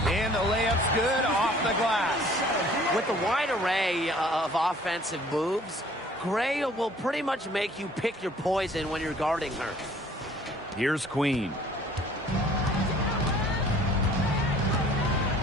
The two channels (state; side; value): normal; both; correlation 0.54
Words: And the layup's good off the glass. With the wide array of offensive moves, Gray will pretty much make you pick your poison when you're guarding her. Here's Queen.